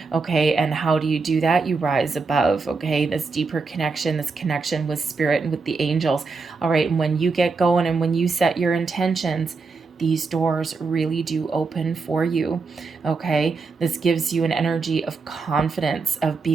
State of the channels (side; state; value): left; quieter; 4.4 dB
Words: okay. And how do you do that? You rise above, okay, this deeper connection, this connection with spirit and with the angels. All right, and when you get going and when you set your intentions, these doors really do open for you, okay. This gives you an energy of confidence, of